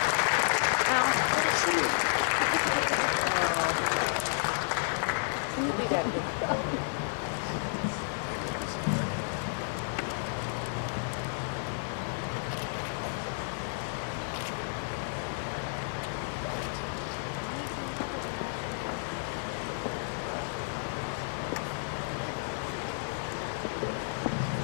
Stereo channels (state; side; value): silent; right; 57 dB below the other